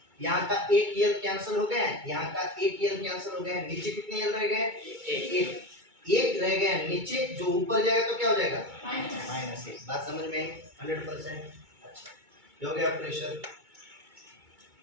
यहाँ का एक l कैंसिल हो गया, यहाँ का एक l कैंसिल हो गया, नीचे कितने l रह गए, एक रह गया नीचे, जो ऊपर जाएगा तो क्या हो जाएगा, -1। बात समझ में आई 100%। अच्छा, ये हो गया प्रेशर।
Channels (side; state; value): left; late; 2.2 ms